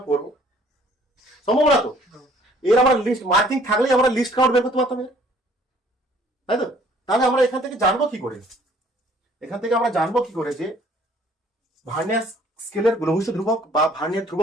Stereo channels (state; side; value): normal; both; correlation 0.58